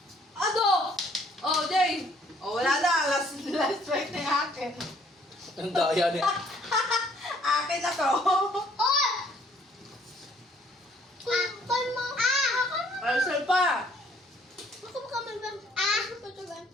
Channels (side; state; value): both; normal; correlation 0.62